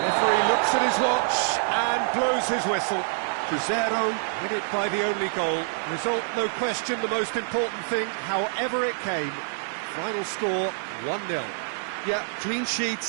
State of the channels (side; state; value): left; silent; digital silence